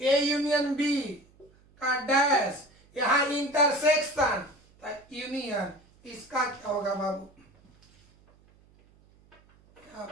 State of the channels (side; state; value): right; noise; hum, 30 dB below the sound